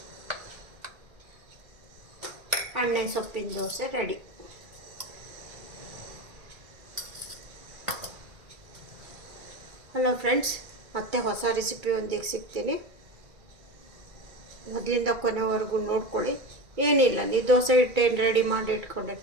ಎಣ್ಣೆ ಸೊಪ್ಪಿನ ದೋಸೆ ರೆಡಿ. ಹಲೋ ಫ್ರೆಂಡ್ಸ್, ಮತ್ತೆ ಹೊಸ ರೆಸಿಪಿಯೊಂದಿಗೆ ಸಿಗ್ತೀನಿ. ಮೊದಲಿಂದ ಕೊನೆವರೆಗೂ ನೋಡ್ಕೊಳ್ಳಿ. ಏನಿಲ್ಲ, ನೀವು ದೋಸೆ ಹಿಟ್ಟೇನು ರೆಡಿ ಮಾಡಿ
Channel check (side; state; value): left; late; 2.3 ms